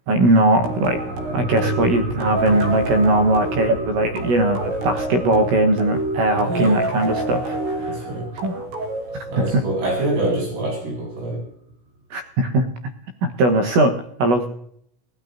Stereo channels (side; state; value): left; late; 16 ms